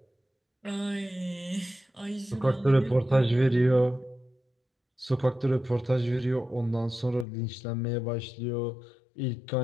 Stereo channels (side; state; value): right; drops out; at 7.2 s